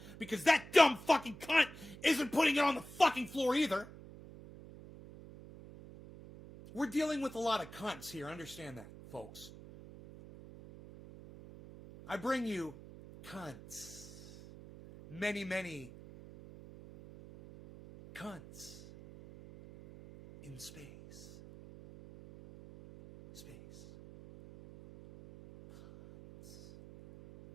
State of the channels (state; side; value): noise; right; hum, 16 dB below the sound